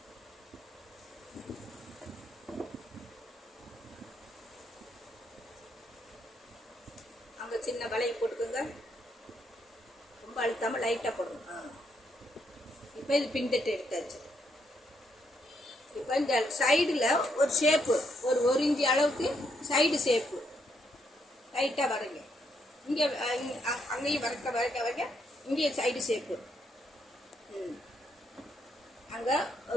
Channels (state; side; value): normal; both; correlation 0.76